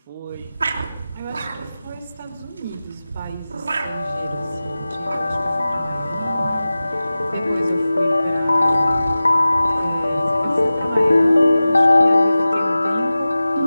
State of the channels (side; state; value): both; inverted; correlation -0.96